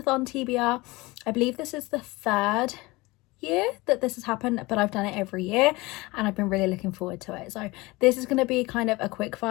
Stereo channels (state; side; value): quieter; right; 22.4 dB